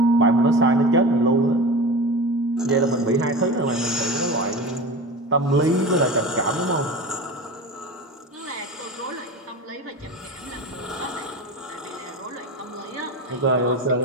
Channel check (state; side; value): normal; both; correlation 0.30